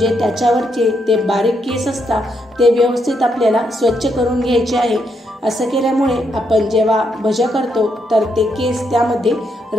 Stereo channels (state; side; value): normal; both; correlation 0.78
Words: त्याच्यावरचे ते बारीक केस असतात ते व्यवस्थित आपल्याला स्वच्छ करून घ्यायचे आहे। असं केल्यामुळे आपण जेव्हा भज्या करतो तर ते केस त्यामध्ये